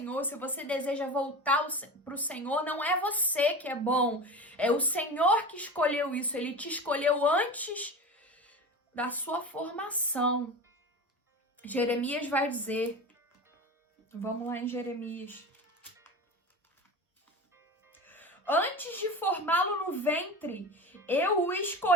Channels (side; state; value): both; normal; correlation 0.29